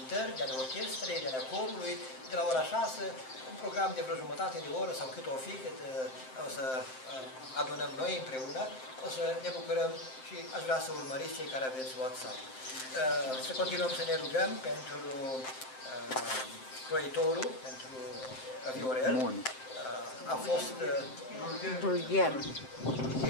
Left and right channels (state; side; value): late; right; 7.7 ms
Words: de ale orchestrei, de ale corului, de la ora 6, un program de vreo jumătate de oră sau cât o fi, cât o să adunăm noi împreună, o să ne bucurăm și aș vrea să urmăriți cei care aveți WhatsApp. Să continuăm să ne rugăm pentru croitorul, pentru Viorel. A fost Dulgher.